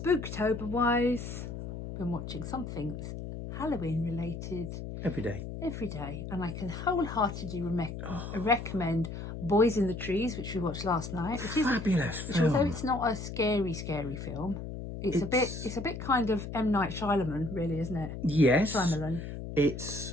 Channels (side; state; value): left; noise; hum, 8 dB below the sound